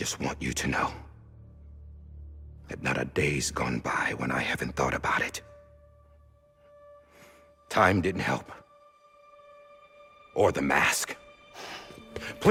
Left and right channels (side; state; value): both; identical; correlation 1.00